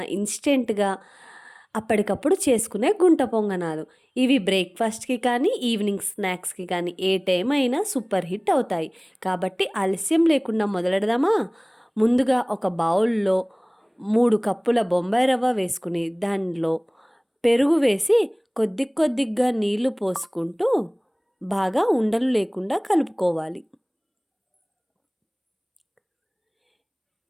ఇన్స్టెంట్‌గా అప్పటికప్పుడు చేసుకునే గుంట పొంగనాలు. ఇవి బ్రేక్‌ఫాస్ట్‌కి కానీ, ఈవినింగ్ స్నాక్స్‌కి కానీ ఏ టైం అయినా సూపర్ హిట్ అవుతాయి. కాబట్టి ఆలస్యం లేకుండా మొదలెడదామా? ముందుగా ఒక బౌల్‌లో 3 కప్పుల బొంబాయి రవ్వ వేసుకుని, దానిలో పెరుగు వేసి కొద్దిగా నీళ్లు పోసుకుంటూ బాగా ఉండలు లేకుండా కలుపుకోవాలి.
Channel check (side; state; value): both; identical; correlation 1.00